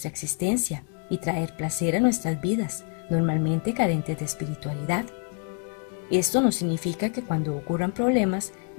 existencia y traer placer a nuestras vidas, normalmente carentes de espiritualidad. Esto no significa que cuando ocurran problemas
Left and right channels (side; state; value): right; quieter; 39.7 dB